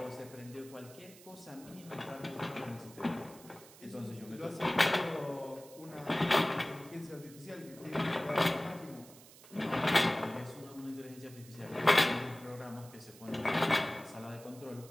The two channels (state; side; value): noise; right; hiss, 20 dB below the sound